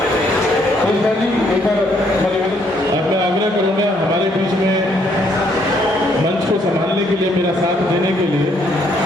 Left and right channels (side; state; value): both; normal; correlation 0.69